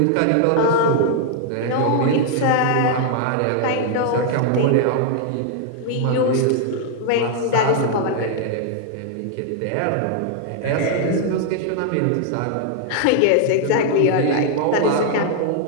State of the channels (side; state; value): both; different; correlation 0.00